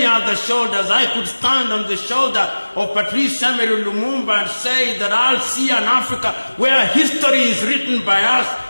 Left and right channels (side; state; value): both; inverted; correlation -1.00